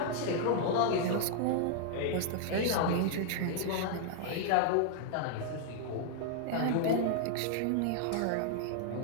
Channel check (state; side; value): different; both; correlation 0.00